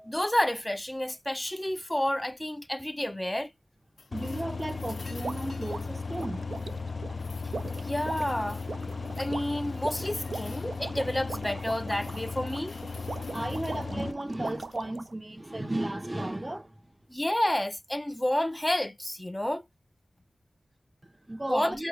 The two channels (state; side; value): normal; both; correlation 0.98